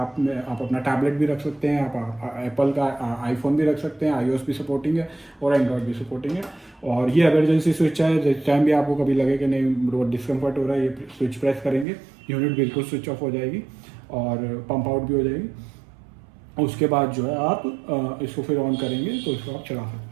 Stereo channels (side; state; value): left; drops out; at 11.9 s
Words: में आप अपना टैबलेट भी रख सकते हैं, आप एप्पल का आईफोन भी रख सकते हैं, iOS भी सपोर्टिंग है और एंड्रॉयड भी सपोर्टिंग है। और ये इमरजेंसी स्विच है, जिस टाइम भी आपको कभी लगे कि नहीं डिस्कम्फर्ट हो रहा है, ये स्विच प्रेस करेंगे, यूनिट बिल्कुल स्विच ऑफ हो जाएगी और पंप आउट भी हो जाएगी। उसके बाद जो है आप इसको फिर ऑन करेंगे तो इसको आप चला